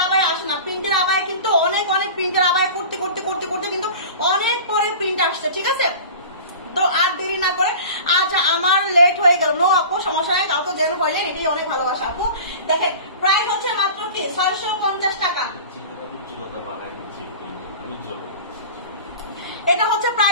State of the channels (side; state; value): both; inverted; correlation -0.37